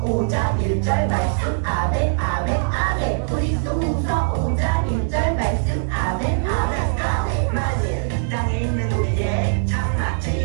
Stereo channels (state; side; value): silent; left; digital silence